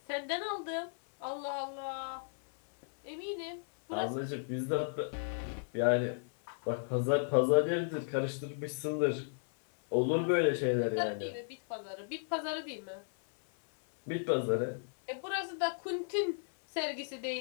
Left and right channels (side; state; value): right; silent; digital silence